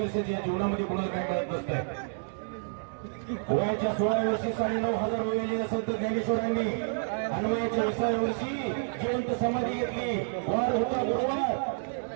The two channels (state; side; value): silent; left; 58 dB below the other